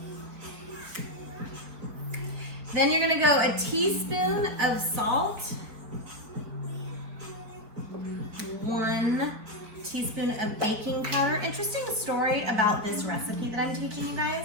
Then you're gonna go a teaspoon of salt. 1 teaspoon of baking powder. Interesting story about this recipe that I'm teaching you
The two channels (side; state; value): left; late; 4.7 ms